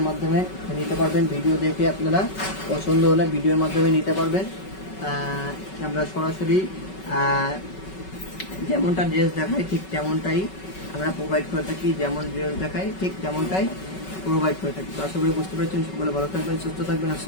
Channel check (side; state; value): right; late; 5.3 ms